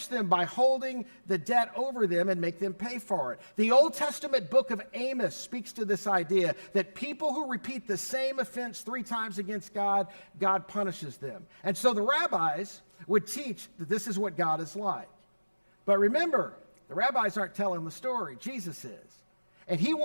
them by holding the debt over them and make them pay for it. The Old Testament book of Amos speaks to this idea that people who repeat the same offense 3 times against God, God punishes them. And so the rabbis would teach that this is what God is like. But remember, the rabbis aren't telling the story. Jesus is. And he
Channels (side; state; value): both; inverted; correlation -1.00